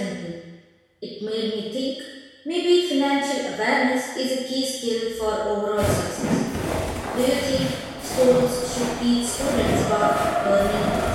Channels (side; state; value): both; identical; correlation 1.00